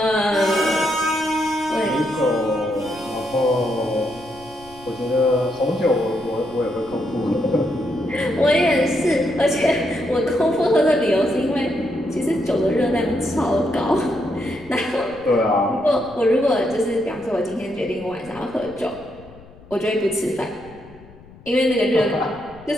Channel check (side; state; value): left; noise; rumble, 22 dB below the sound